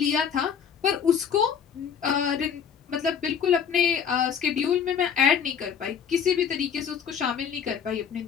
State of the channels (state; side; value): quieter; right; 7.5 dB